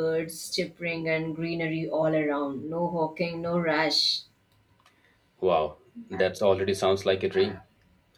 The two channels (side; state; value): both; identical; correlation 1.00